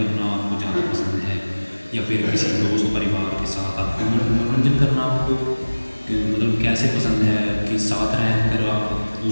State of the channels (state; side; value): inverted; both; correlation -1.00